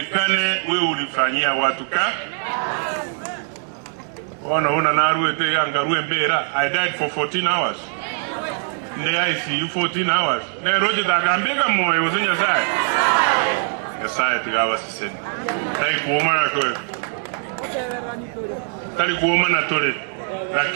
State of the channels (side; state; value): left; silent; 56 dB below the other